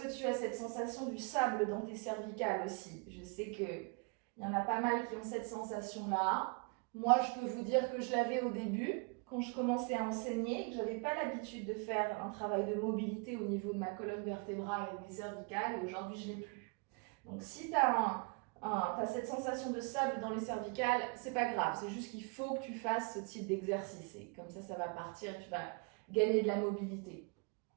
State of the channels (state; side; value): quieter; left; 33.2 dB